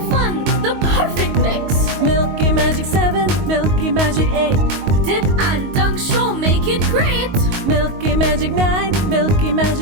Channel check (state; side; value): late; left; 22 ms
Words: fun, the perfect mix. Milky Magic 7, Milky Magic 8. Dip and dunk sure make it great. Milky Magic 9, Milky